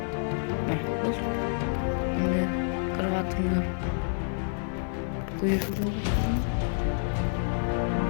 Endi kravatimni qo'yib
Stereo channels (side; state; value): right; silent; digital silence